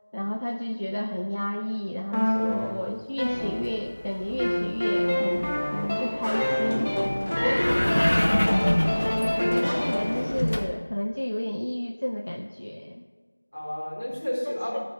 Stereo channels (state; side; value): inverted; both; correlation -1.00